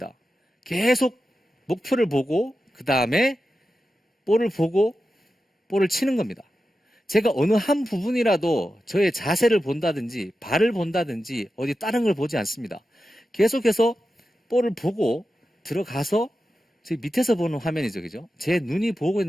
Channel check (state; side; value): normal; both; correlation 0.91